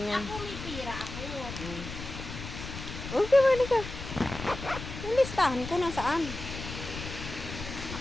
yan. Ako may pira ako. Okay, mali ka. Yung listahan ko nasaan?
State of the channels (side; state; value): left; noise; rumble, 9 dB below the sound